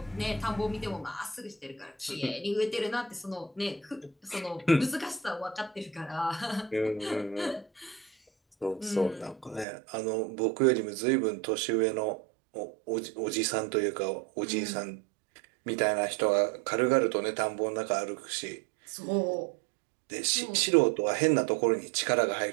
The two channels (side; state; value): left; drops out; at 9.7 s